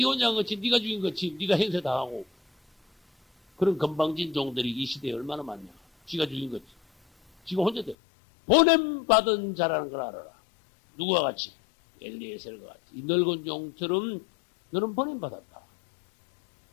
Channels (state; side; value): drops out; right; at 8.0 s